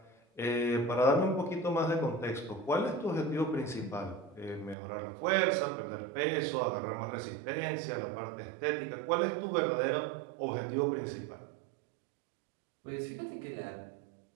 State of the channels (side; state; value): left; drops out; at 4.8 s